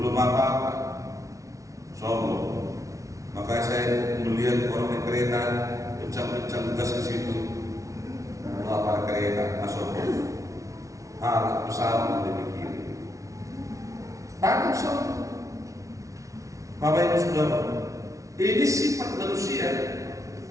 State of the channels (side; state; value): left; late; 0.16 ms